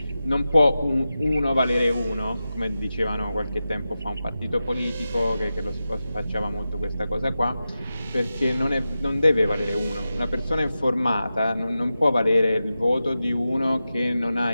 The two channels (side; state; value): both; inverted; correlation -0.92